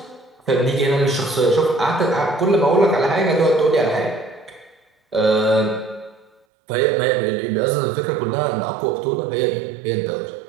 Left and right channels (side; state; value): left; drops out; at 6.4 s